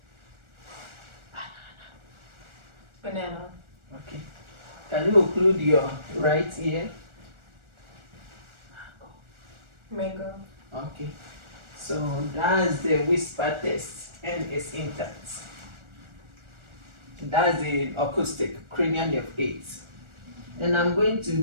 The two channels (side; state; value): left; late; 1.4 ms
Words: Banana. Okay. Can you occlude your right ear? Mango. Okay. So that's the whisper test, and it's intact. That's the acoustic, cranial nerve 8. And I'm going to